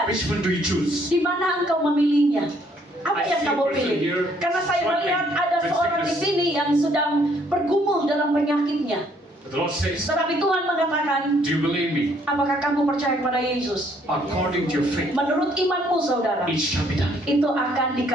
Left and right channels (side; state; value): both; normal; correlation 0.65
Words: Which one do you choose? di mana engkau memilihnya? Apa I yang see a kamu person pilih? here Karena saya melihat struggling ada with seorang di sickness. sini yang sedang bergumul dalam penyakitnya. The Lord says, Tetapi Tuhan mengatakan, do you believe me? apakah kamu percaya kepada Yesus? According to your faith, Menurut imanmu, saudara, it shall be done. itu akan